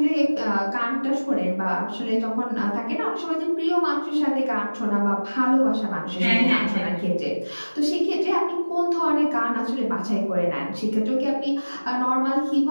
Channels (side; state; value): both; inverted; correlation -1.00